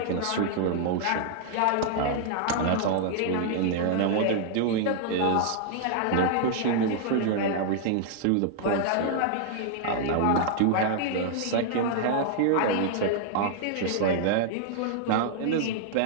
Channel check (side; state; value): both; different; correlation -0.01